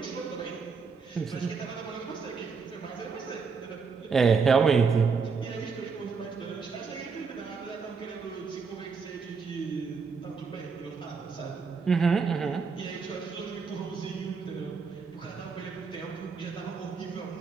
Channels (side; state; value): left; quieter; 5.2 dB